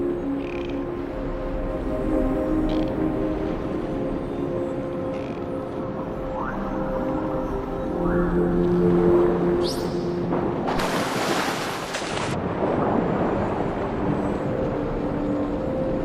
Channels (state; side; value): identical; both; correlation 1.00